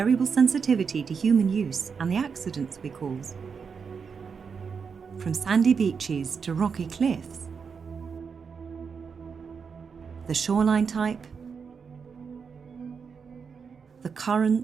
sensitivity to human use and the accidents we cause. From sandy beaches to rocky cliffs, the shoreline type, the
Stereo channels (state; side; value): quieter; left; 5.9 dB